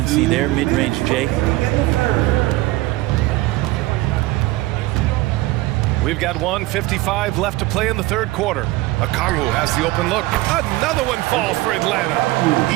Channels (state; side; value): quieter; left; 19.1 dB